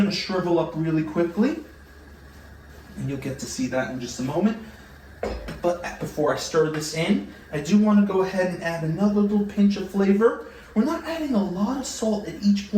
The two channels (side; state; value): both; identical; correlation 1.00